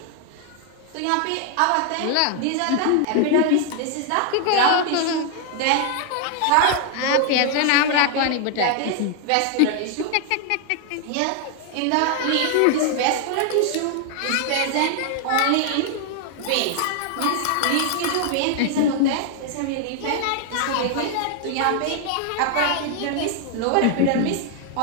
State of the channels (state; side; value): different; both; correlation 0.00